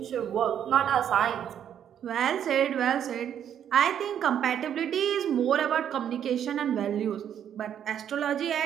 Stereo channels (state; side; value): quieter; left; 9.4 dB